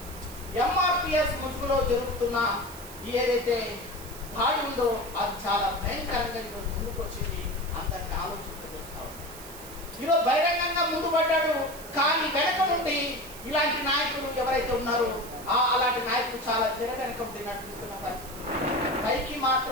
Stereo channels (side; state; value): right; noise; hiss, 15 dB below the sound